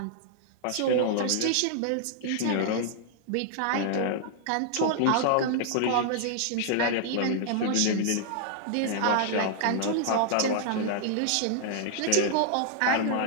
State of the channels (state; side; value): different; both; correlation -0.01